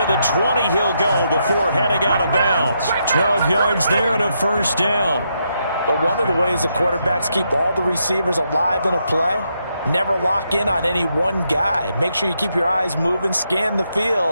the 20 he'll go before heading out of bounds. 12 yards there and a 1st down. But one of the ways the quarterbacks keep all the receivers alive in a play, never lock in on any one guy. Make sure you keep your eyes moving, scan the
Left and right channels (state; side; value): inverted; both; correlation -0.79